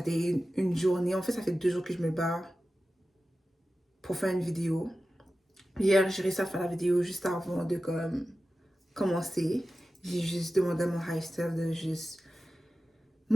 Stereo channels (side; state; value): both; normal; correlation 0.94